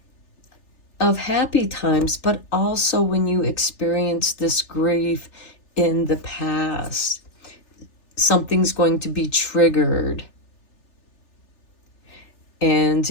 happy times, but also when you experience this grief in the past, something's going to be triggered. And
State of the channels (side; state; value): right; late; 3.4 ms